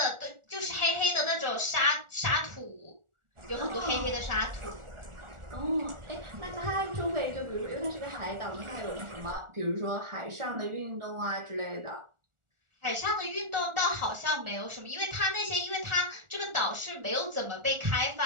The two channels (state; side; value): late; left; 1.4 ms